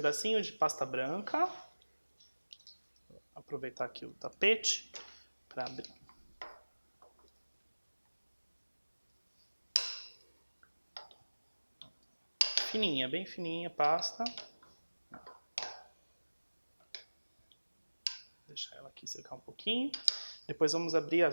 de pasta branca. Vou aproveitar aqui o tapete para abrir. Fininha, bem fininha a pasta. Deixar ela aqui secar um pouquinho. Depois vamos abrir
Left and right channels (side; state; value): both; inverted; correlation -1.00